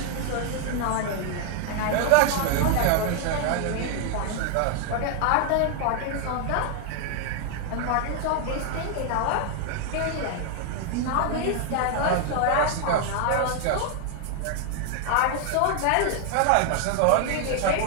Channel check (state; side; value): different; both; correlation 0.00